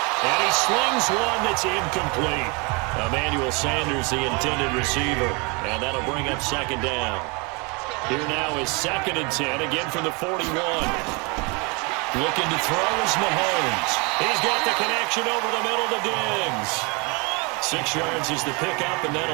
And he slings one that's incomplete. Emmanuel Sanders, the intended receiver. And that'll bring up second down. Here now is 2nd and 10, again from the 41. Looking to throw is Mahomes. He's got the connection over the middle to Diggs. 6 yards is the pickup, and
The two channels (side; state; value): left; quieter; 30.0 dB